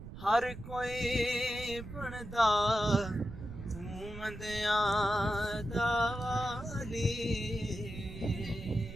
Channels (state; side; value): noise; right; rumble, 12 dB below the sound